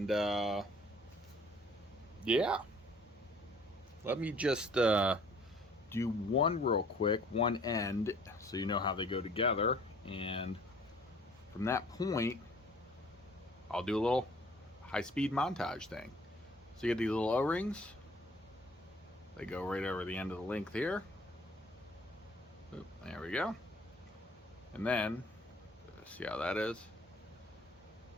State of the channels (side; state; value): both; normal; correlation 0.55